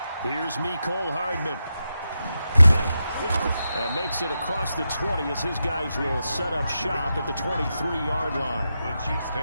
Here's Mecole Hardman. And makes it across the 20 as his guys will set up shop at the 23-yard line. The Chiefs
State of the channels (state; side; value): inverted; both; correlation -0.88